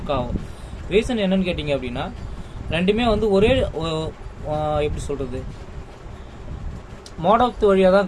ஆகும். ரீசன் என்னன்னு கேட்டிங்க அப்படின்னா, ரெண்டுமே வந்து ஒரே எப்படி சொல்கிறது, மோடத்து வழியாக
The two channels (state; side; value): identical; both; correlation 1.00